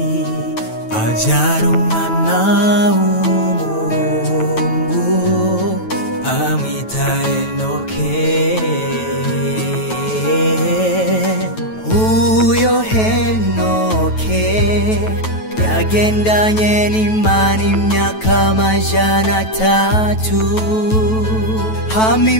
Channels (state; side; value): late; right; 9.2 ms